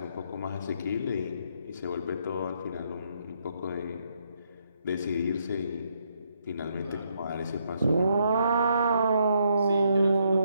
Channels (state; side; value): inverted; both; correlation -0.75